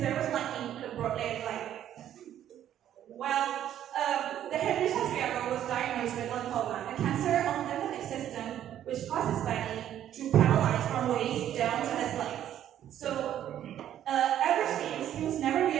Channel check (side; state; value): left; quieter; 11.1 dB